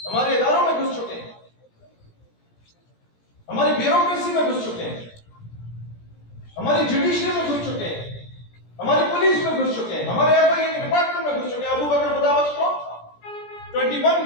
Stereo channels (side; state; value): right; late; 17 ms